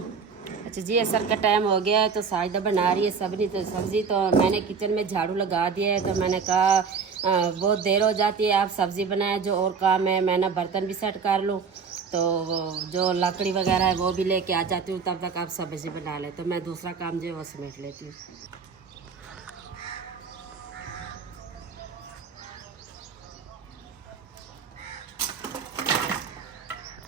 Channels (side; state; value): left; quieter; 5.7 dB